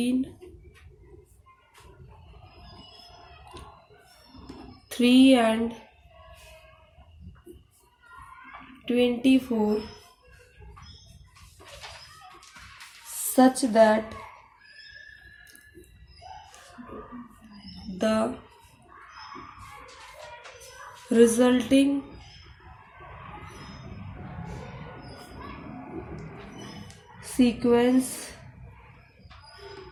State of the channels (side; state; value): both; identical; correlation 1.00